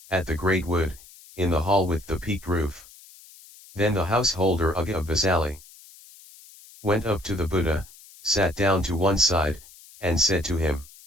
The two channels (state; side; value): noise; left; hiss, 22 dB below the sound